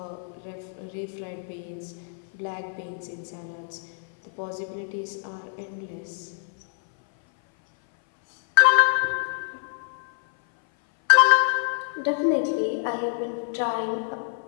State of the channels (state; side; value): silent; right; 58 dB below the other